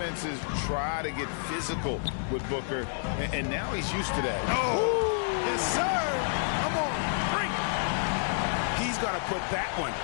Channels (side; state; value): right; silent; digital silence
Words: try to get physical with Booker, and now he's used to that. Oh, yes, sir. Come on, bring it. He's going to put that one